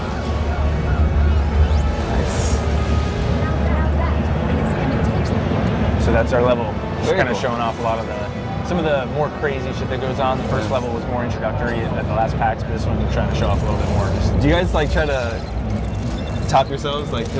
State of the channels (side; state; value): both; identical; correlation 1.00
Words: Nice. So that's our level. Just kind of cool. showing off a lot of some of the more crazy shit that goes on. The first level was more introductory at the last PAX, but this one we're trying to show off a little bit more. Do you guys like try to top yourselves? Like,